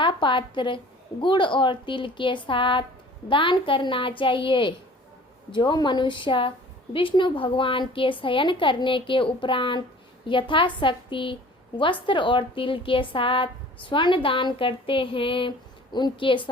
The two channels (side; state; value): both; normal; correlation 0.47